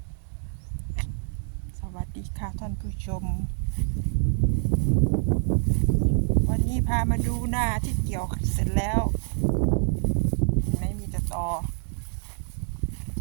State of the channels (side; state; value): left; silent; 61 dB below the other